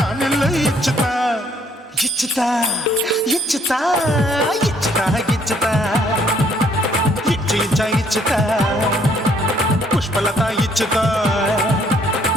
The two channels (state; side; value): normal; both; correlation 0.65